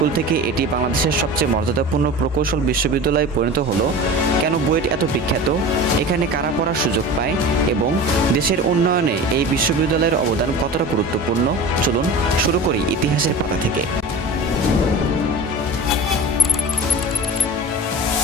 থেকে এটি বাংলাদেশের সবচেয়ে মর্যাদাপূর্ণ প্রকৌশল বিশ্ববিদ্যালয়ে পরিণত হলো, কেন বুয়েট এত বিখ্যাত, এখানে কারা পড়ার সুযোগ পায় এবং দেশের উন্নয়নে এই বিশ্ববিদ্যালয়ের অবদান কতটা গুরুত্বপূর্ণ। চলুন শুরু করি ইতিহাসের পাতা থেকে।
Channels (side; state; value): both; normal; correlation 0.34